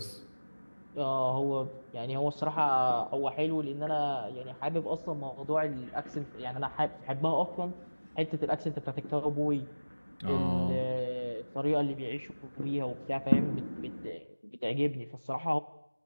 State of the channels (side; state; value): both; inverted; correlation -1.00